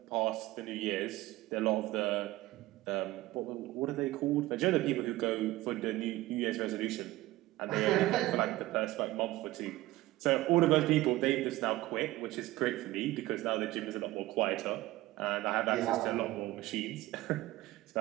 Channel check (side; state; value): left; quieter; 17.8 dB